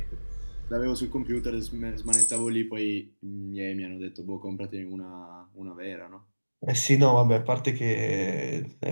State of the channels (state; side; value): inverted; both; correlation -1.00